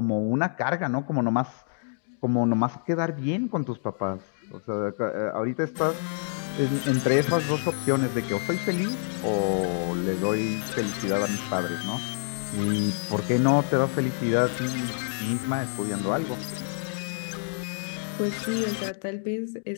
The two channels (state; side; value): silent; right; digital silence